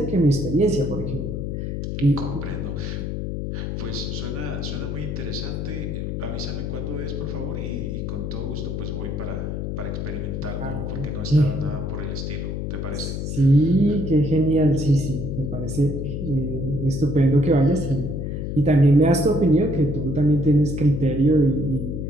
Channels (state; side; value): noise; left; hum, 4 dB below the sound